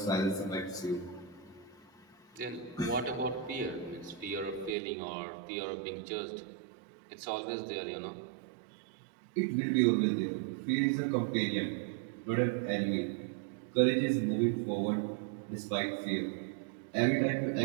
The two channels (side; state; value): left; drops out; at 4.8 s